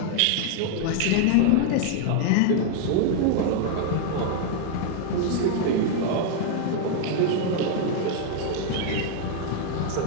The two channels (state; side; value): different; both; correlation 0.00